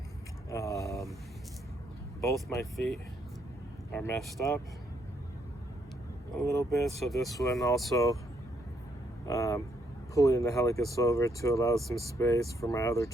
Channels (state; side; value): normal; both; correlation 0.73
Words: Both my feet are messed up a little bit, so this one also pulling the helicus over to allow some space for my other